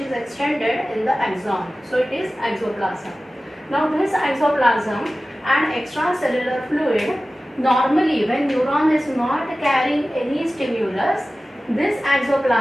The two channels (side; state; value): both; normal; correlation 0.96